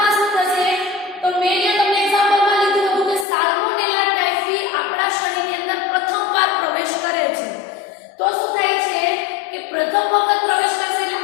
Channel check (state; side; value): drops out; right; at 3.2 s